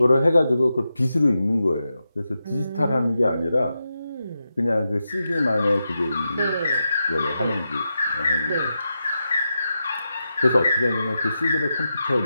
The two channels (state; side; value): inverted; both; correlation -0.89